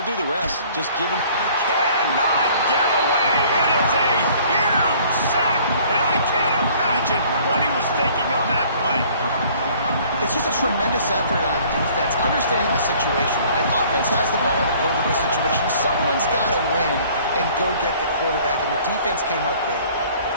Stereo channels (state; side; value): inverted; both; correlation -0.54